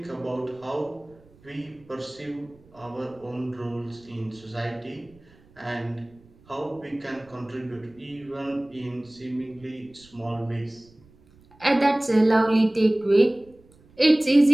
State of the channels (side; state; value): right; noise; rumble, 28 dB below the sound